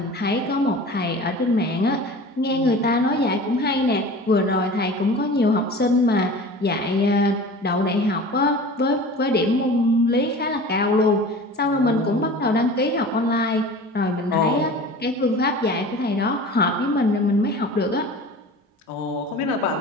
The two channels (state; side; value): normal; both; correlation 0.38